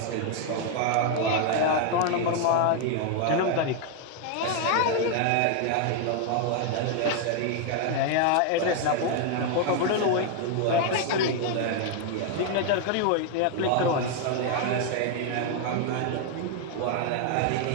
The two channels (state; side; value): different; both; correlation 0.00